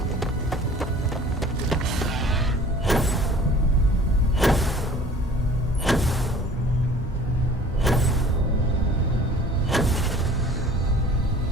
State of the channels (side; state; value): both; normal; correlation 0.48